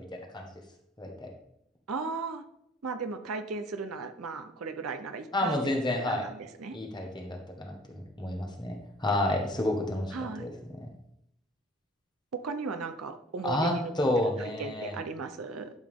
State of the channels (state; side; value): normal; both; correlation 0.51